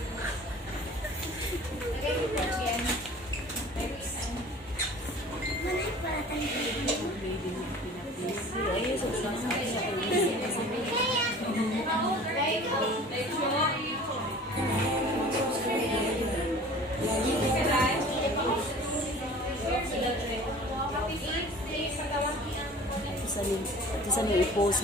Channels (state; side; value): normal; both; correlation 0.44